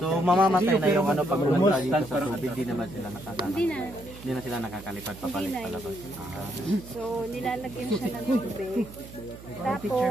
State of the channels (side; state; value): right; noise; hum, 16 dB below the sound